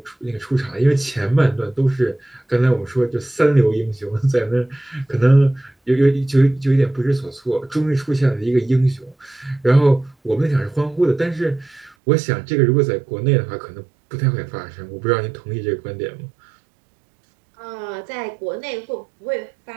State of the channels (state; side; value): drops out; left; at 12.0 s